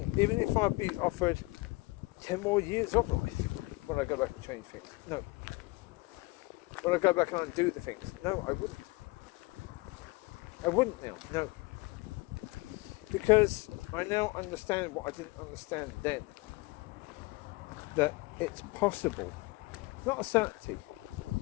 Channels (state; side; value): quieter; right; 23.4 dB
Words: even if I'd be offered 10 more years of life. Would I go back and change things? No. Would I go back and undo the things? No, I wouldn't. I wouldn't now, no. Because I now understand what I didn't understand then. That it's possible, it's not a certainty,